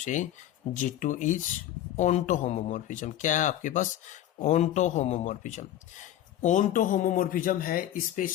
G2 इज ऑनटो होमोमॉर्फिज्म, क्या है आपके पास, ऑनटो होमोमॉर्फिज्म। ऑनटो होमोमॉर्फिज्म है, इस पे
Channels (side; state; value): right; quieter; 12.3 dB